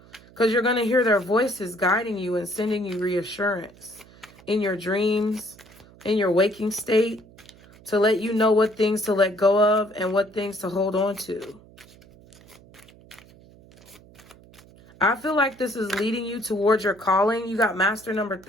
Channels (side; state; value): right; noise; hum, 24 dB below the sound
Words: Because you're going to hear their voices guiding you and sending you reassurance in your dreams, in your waking state, to let you know what things to let go of and what things to hold on to. I feel like this is leading you towards your calling. You got master number